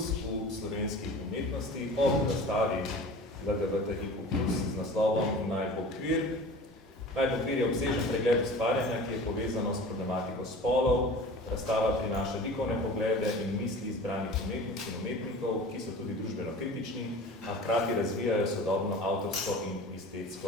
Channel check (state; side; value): normal; both; correlation 0.39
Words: slovenskih umetnosti ob razstavi LGBTIQ+ z naslovom Naj bo kvir. Naj bo kvir je obsežen pregled ustvarjanja, ki je povezano s problematiko spolov. Razstava prinaša likovne poglede in misli izbranih umetnic in umetnikov, ki so tudi družbeno kritični, a hkrati razvijajo sodobno avtorsko in